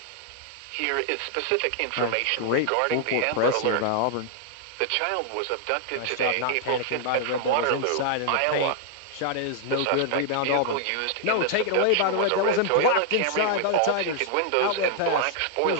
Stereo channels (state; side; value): different; both; correlation 0.00